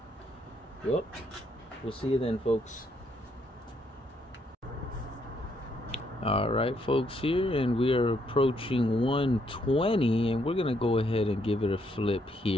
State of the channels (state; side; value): normal; both; correlation 0.73